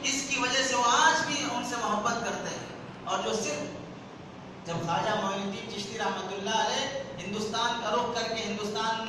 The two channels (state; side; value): identical; both; correlation 1.00